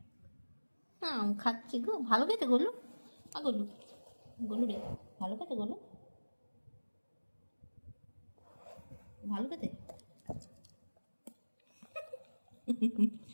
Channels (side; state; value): both; inverted; correlation -1.00